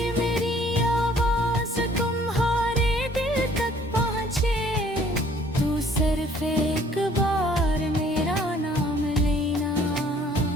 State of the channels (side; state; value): both; normal; correlation 0.58